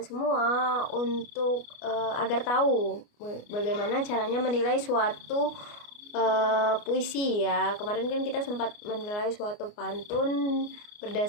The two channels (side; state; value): right; late; 29 ms